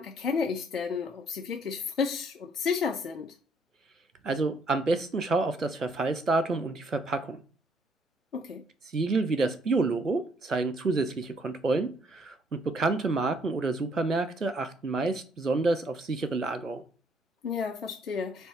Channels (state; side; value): normal; both; correlation 0.67